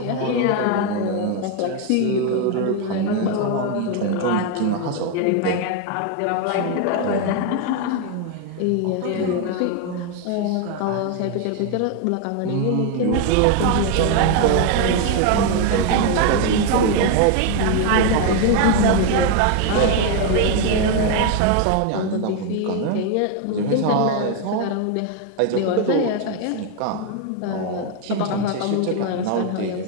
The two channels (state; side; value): different; both; correlation 0.01